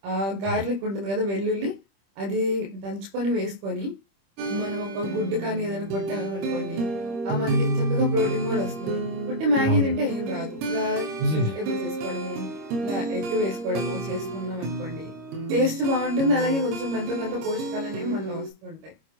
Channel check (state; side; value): late; left; 26 ms